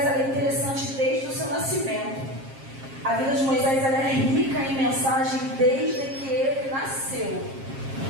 é interessante desde o seu nascimento. A vida de Moisés ela é rica em mensagem desde que ele nasceu.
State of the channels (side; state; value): left; late; 7.4 ms